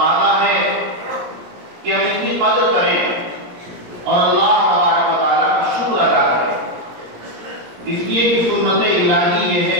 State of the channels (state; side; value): late; left; 17 ms